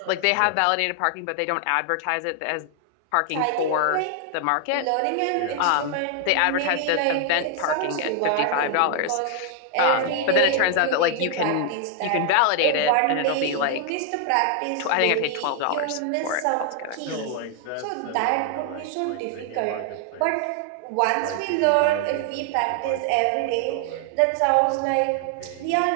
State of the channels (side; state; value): both; different; correlation 0.00